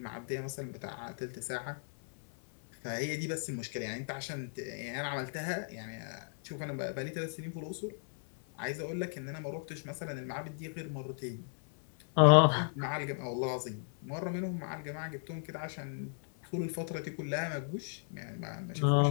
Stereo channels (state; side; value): silent; right; 54 dB below the other